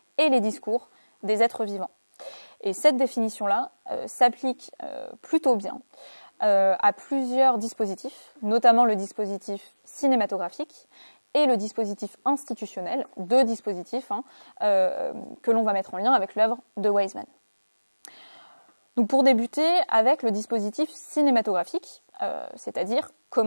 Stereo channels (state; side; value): inverted; both; correlation -1.00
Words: et les discours des êtres vivants. Et cette définition-là s'applique plutôt bien à plusieurs dispositifs, notamment le dispositif cinématographique et le dispositif institutionnel, deux dispositifs que l'on va mettre en lien avec l'œuvre de Wiseman. Donc pour débuter avec le dispositif cinématographique, c'est-à-dire